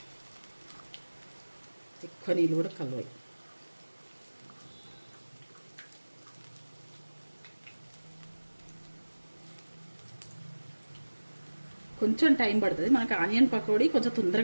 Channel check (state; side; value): inverted; both; correlation -1.00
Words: ఎక్కువ నీళ్ళు కూడా కలవాయి. కొంచెం టైం పడుతుంది మనకు. ఆనియన్ పకోడీ కొంచెం